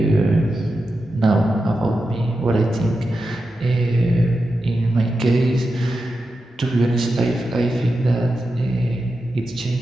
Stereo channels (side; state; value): both; normal; correlation 0.90